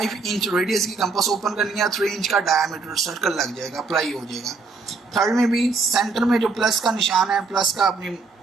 इंच रेडियस की कंपास ओपन करनी है, 3 इंच का डायमीटर सर्कल लग जाएगा, अप्लाई हो जाएगा। थर्ड में भी सेंटर में जो प्लस का निशान है, प्लस का आपने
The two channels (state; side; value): quieter; left; 4.2 dB